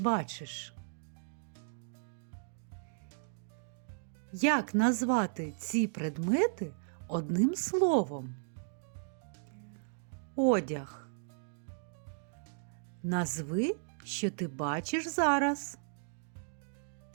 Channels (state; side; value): silent; left; digital silence